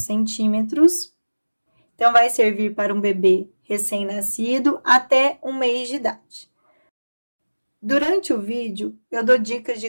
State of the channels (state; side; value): inverted; both; correlation -1.00